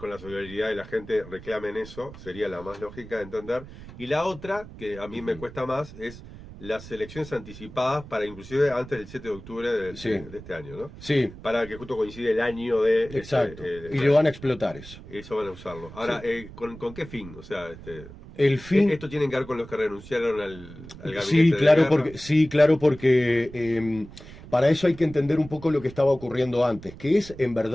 la solidaridad de la gente, reclamen eso. Sería la más lógica de entender. Y la otra, que a mí me cuesta más, es las elecciones anticipadas para inclusive antes del 7 de octubre de este año, ¿no? Sí. Para que justo coincide el año de... Exacto. Y lo van a explotar eso. Eso van a usarlo. Ahora, Sí. ¿con qué fin? O sea, el fin... ¿Esto tiene que ver con los que renunciaron al gabinete Sí, claro, de porque para eso hay que entender un poco lo que estaba ocurriendo antes, que es en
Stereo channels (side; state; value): right; noise; rumble, 16 dB below the sound